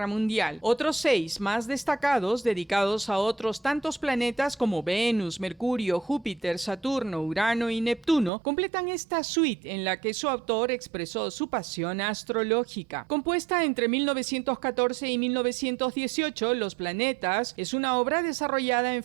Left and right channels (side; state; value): left; drops out; at 8.3 s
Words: Mundial. Otros 6 más destacados, dedicados a otros tantos planetas como Venus, Mercurio, Júpiter, Saturno, Urano y Neptuno, completan esta suite en la que su autor expresó su pasión astrológica. Compuesta entre 1914 y 1918, Los Planetas es una obra desarrollada en